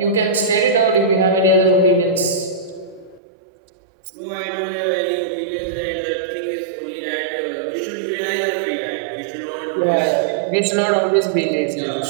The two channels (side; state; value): left; drops out; at 3.2 s